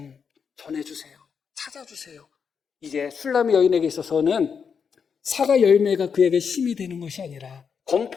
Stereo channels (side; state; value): right; quieter; 6.4 dB